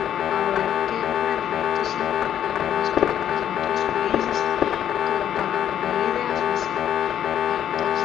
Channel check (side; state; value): right; quieter; 10.2 dB